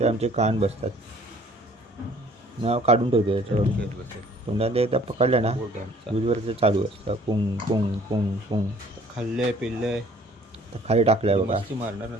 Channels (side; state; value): both; normal; correlation 0.55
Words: आमचे कान बसतात. नाव काढून ठेवतो त्याच्यावर. तोंडाने एकदा पकडलं ना वीजवरचं चालू असतं, पुंग पुंग पुंग पुंग. खाल्ले पिल्ले तर खाली टाकलंय बघा,